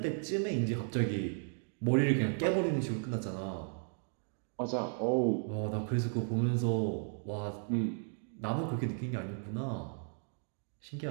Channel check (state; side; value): silent; left; 54 dB below the other